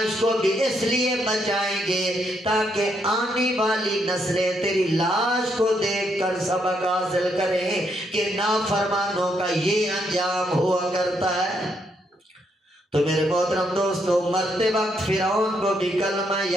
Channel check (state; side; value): normal; both; correlation 0.76